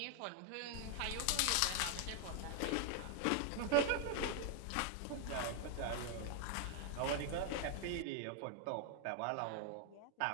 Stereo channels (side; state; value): both; different; correlation 0.00